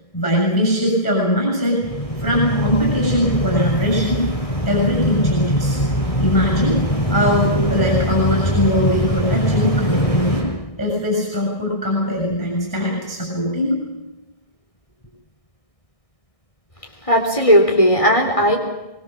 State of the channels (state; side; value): late; right; 1.6 ms